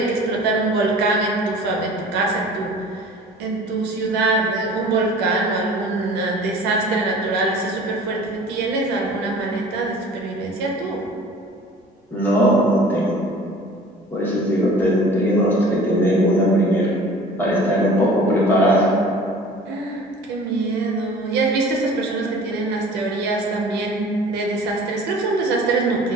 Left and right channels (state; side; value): normal; both; correlation 0.45